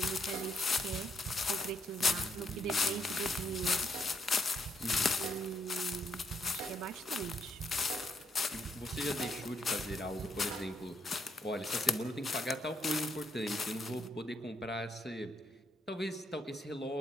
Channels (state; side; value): normal; both; correlation 0.74